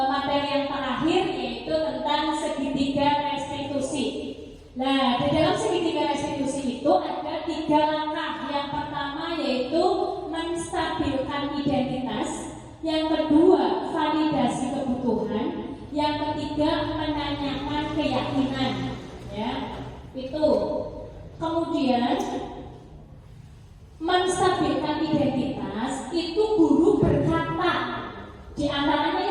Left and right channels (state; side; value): identical; both; correlation 1.00